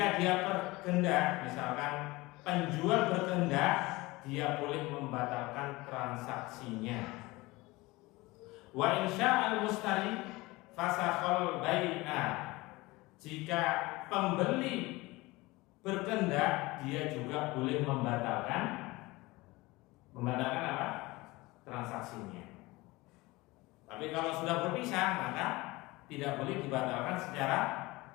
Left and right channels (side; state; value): right; quieter; 21.6 dB